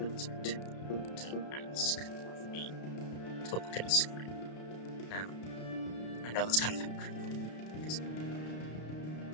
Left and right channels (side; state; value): right; late; 33 ms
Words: to ask of me to look at a screen. Now, I know that's kind of hypocritical because